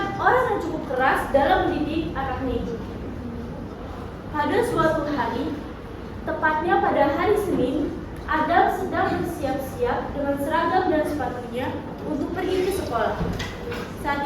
orang yang cukup keras dalam mendidik anaknya itu. Pada suatu hari, tepatnya pada hari Senin, Adam sedang bersiap-siap dengan seragam dan sepatunya untuk pergi ke sekolah.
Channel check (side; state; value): both; identical; correlation 1.00